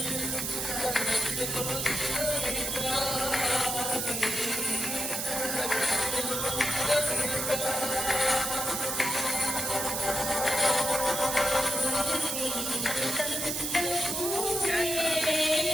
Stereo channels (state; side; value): noise; right; hiss, 2 dB below the sound